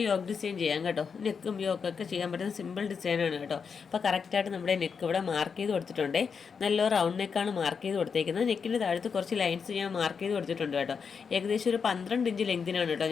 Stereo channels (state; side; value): quieter; right; 6.0 dB